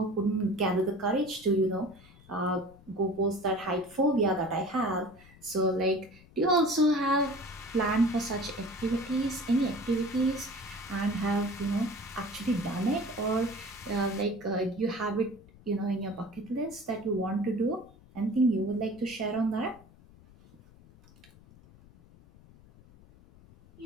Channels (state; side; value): noise; left; rumble, 24 dB below the sound